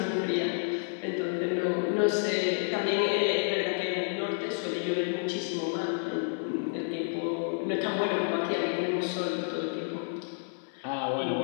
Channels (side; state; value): right; silent; 58 dB below the other